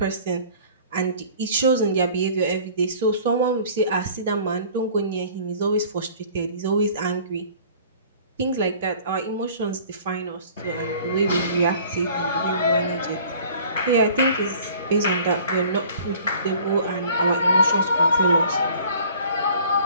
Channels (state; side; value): inverted; both; correlation -0.50